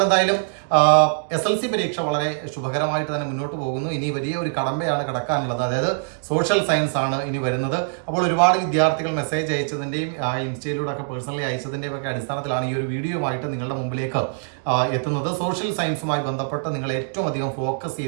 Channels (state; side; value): silent; left; digital silence